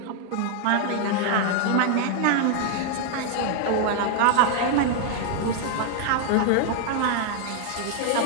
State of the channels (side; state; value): both; different; correlation 0.00